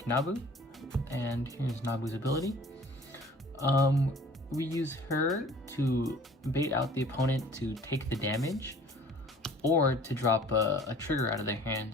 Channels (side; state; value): both; normal; correlation 0.50